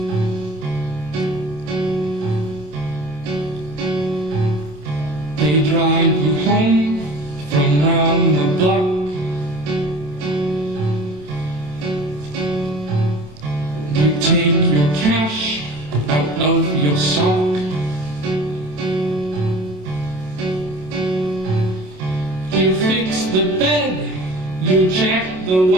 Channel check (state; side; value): late; left; 27 ms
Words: They drive you home from round the block. You take your cash out of your sock. You fix the bed, you check the